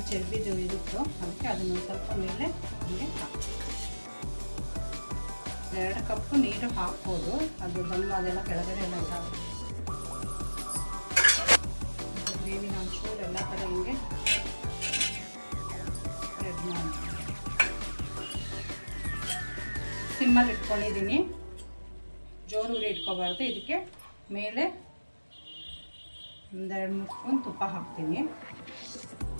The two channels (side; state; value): both; inverted; correlation -1.00